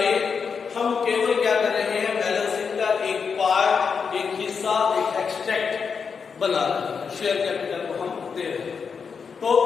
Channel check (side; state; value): right; quieter; 5.9 dB